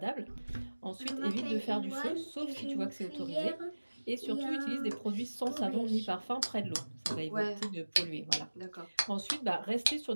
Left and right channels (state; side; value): inverted; both; correlation -1.00